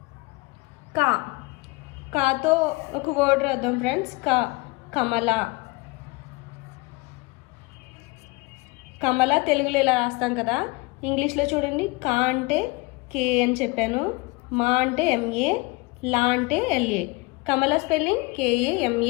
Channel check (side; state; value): right; quieter; 25.3 dB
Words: కా కాతో ఒక వర్డ్ రాద్దాం ఫ్రెండ్స్. కా కమల. కమల తెలుగులో ఇలా రాస్తాం కదా. ఇంగ్లీష్లో చూడండి. కా అంటే కే అని చెప్పాను. మా అంటే ఎంఏ. లా అంటే ఎల్ఏ. కమల స్పెల్లింగ్